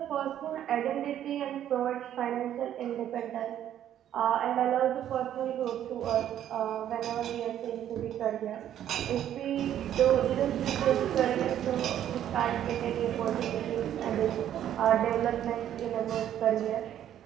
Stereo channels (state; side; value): quieter; left; 10.9 dB